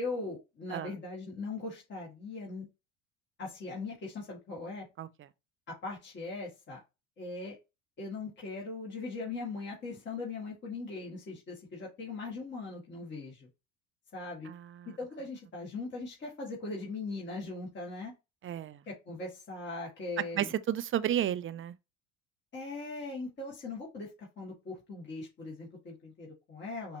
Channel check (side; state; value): both; normal; correlation 0.25